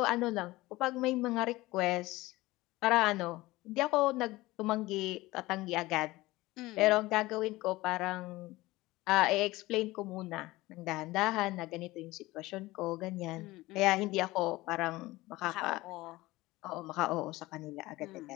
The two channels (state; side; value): quieter; right; 19.3 dB